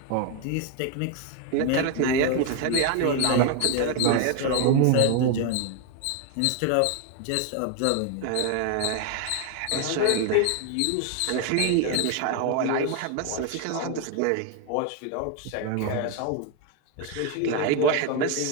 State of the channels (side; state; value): both; different; correlation 0.01